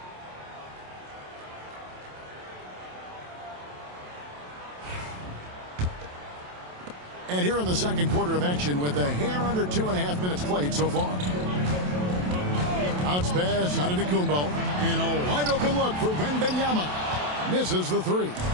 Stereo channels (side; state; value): left; late; 27 ms